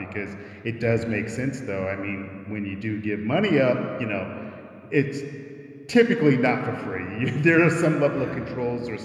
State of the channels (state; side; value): identical; both; correlation 1.00